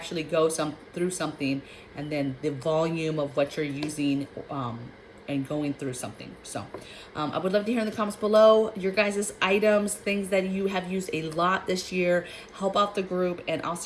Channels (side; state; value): both; identical; correlation 1.00